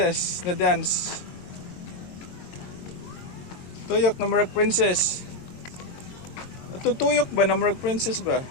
na dance. Tuyok na murag princess. Ato tuyok ba na murag princess ba?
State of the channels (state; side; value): late; right; 22 ms